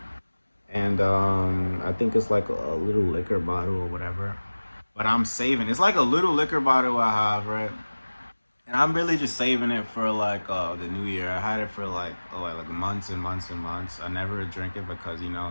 and I think it's like a little liquor bottle or whatever. But I'm saving. It's like a little liquor bottle I have, right? And I'm really just saving it for like the new year. I had it for like like months and months and months. I never drink it because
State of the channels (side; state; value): both; inverted; correlation -1.00